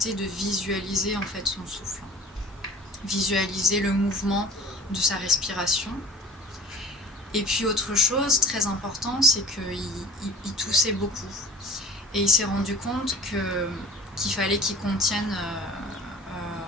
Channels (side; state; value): both; normal; correlation 0.42